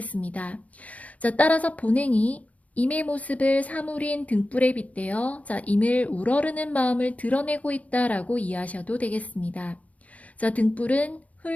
자, 따라서 본행이 임의 모습을 사물인 등불에 빗대어 자, 임을 우러르는 마음을 드러내고 있다라고 이해하셔도 되겠습니다. 자, 등불은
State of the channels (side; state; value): right; late; 0.069 ms